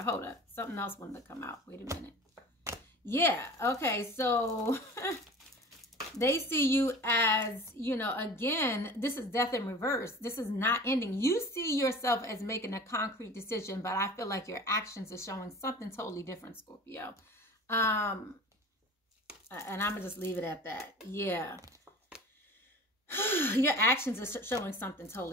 Hold up. Something else wanted to come out. Wait a minute. Yeah. Okay. So... They see you as, you know, again, this is death in reverse. This is not ending. You see yourself as making a concrete decision, but I feel like your actions are showing something totally different, Scorpio. And I'm going to just leave it at that. Yeah. Your actions are showing something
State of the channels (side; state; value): both; normal; correlation 0.40